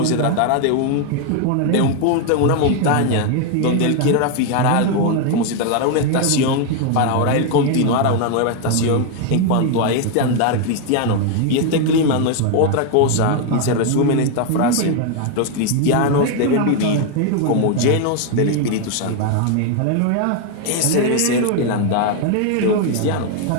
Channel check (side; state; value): both; different; correlation 0.01